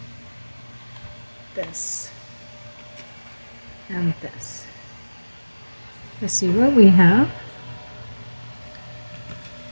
This. And this. Let's see what we have.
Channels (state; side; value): inverted; both; correlation -1.00